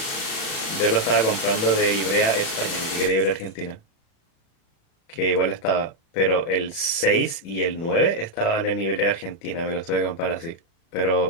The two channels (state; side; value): late; right; 36 ms